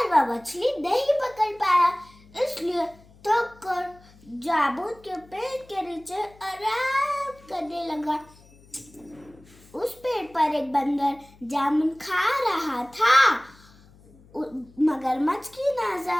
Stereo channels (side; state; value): left; noise; hum, 26 dB below the sound